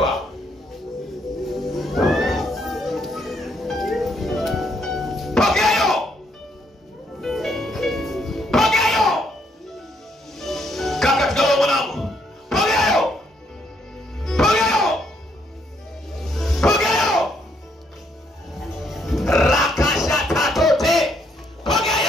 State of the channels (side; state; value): both; normal; correlation 0.72